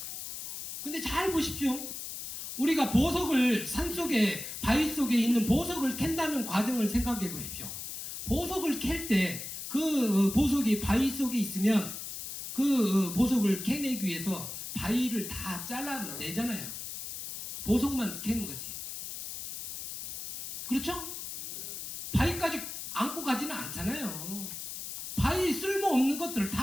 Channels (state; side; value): noise; left; hiss, 8 dB below the sound